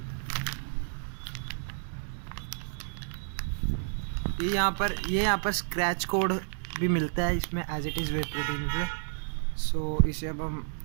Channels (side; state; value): left; silent; digital silence